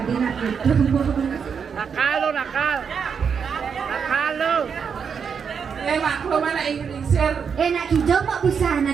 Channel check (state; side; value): quieter; left; 6.6 dB